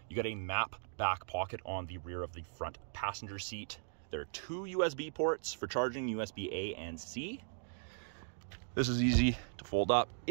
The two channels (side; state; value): left; silent; digital silence